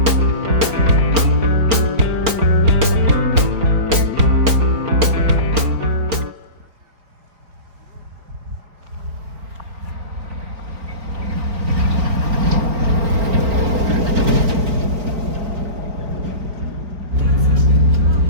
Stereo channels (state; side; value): late; left; 4.4 ms